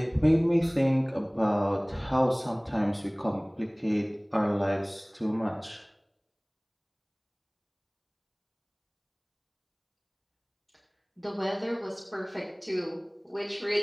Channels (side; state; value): both; identical; correlation 1.00